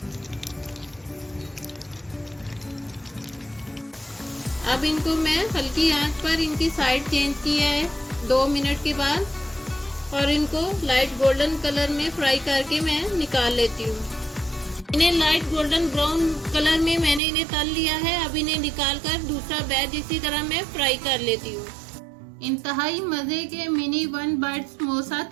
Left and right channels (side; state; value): left; drops out; at 17.2 s